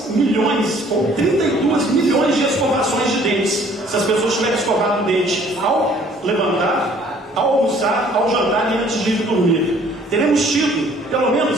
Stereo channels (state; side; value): normal; both; correlation 0.57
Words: milhões ou 32 milhões de escovações de dentes. Se as pessoas tiverem escovado o dente ao levantar, ao almoçar, ao jantar e antes de ir dormir. Teremos tido pelo